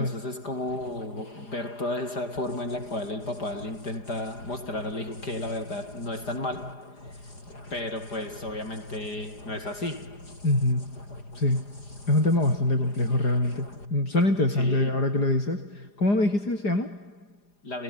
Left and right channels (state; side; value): late; right; 4.9 ms